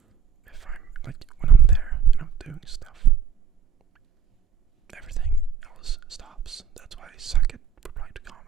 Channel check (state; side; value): quieter; left; 7.3 dB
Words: If I'm when I'm there and I'm doing stuff, everything else stops. That's why I suck at replying to